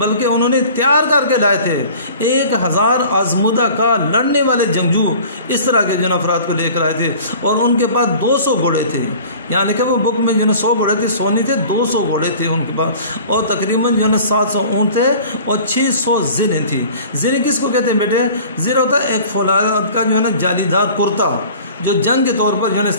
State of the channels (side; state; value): both; inverted; correlation -0.45